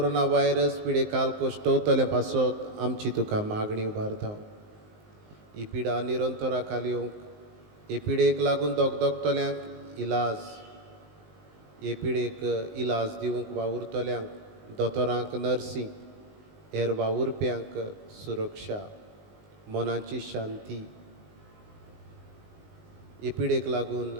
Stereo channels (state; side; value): late; left; 19 ms